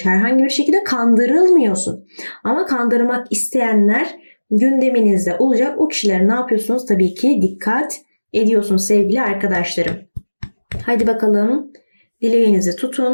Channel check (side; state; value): both; inverted; correlation -1.00